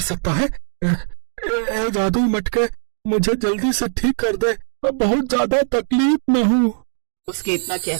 सकता है? जादुई मटके, मुझे जल्दी से ठीक कर दे, मैं बहुत ज्यादा तकलीफ में हूँ। उसके इतना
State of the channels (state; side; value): silent; left; digital silence